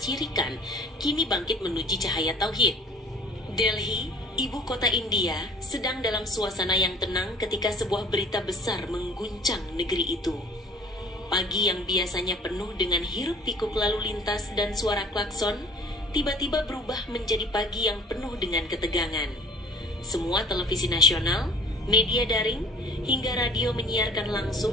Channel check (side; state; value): both; normal; correlation 0.48